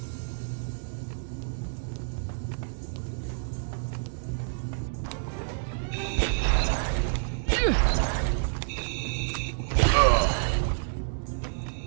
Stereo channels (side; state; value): left; silent; digital silence